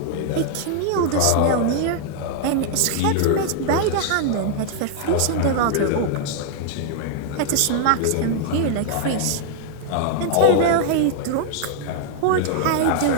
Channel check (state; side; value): different; both; correlation 0.00